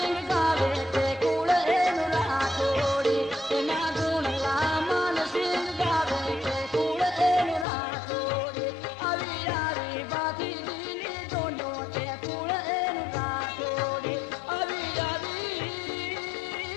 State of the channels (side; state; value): right; drops out; at 7.7 s